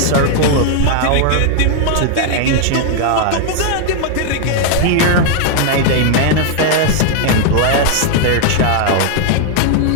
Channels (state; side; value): different; both; correlation 0.00